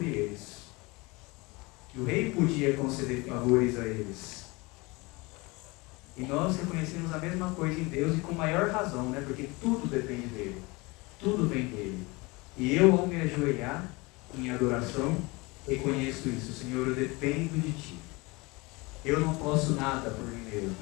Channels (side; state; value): right; quieter; 24.9 dB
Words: eles. Que o rei podia conceder favores a eles. E nós reconhecemos a mesma coisa em Deus e com maior razão, né? Porque tudo depende dele. Tudo vem dele. E eu, ao me ajoelhar em adoração, reconheço isso. Senhor, eu dependo de Ti. Eu não posso nada por mim mesmo.